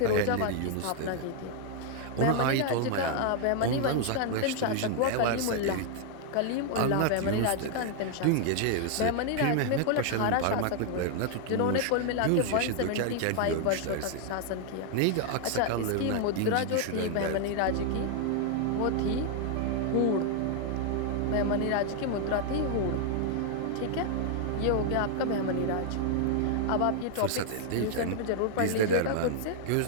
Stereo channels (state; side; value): different; both; correlation 0.00